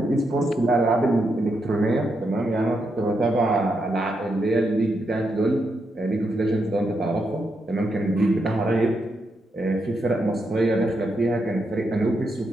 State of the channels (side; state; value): both; normal; correlation 0.82